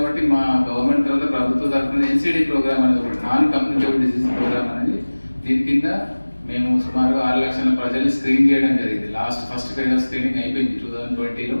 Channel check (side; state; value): both; inverted; correlation -1.00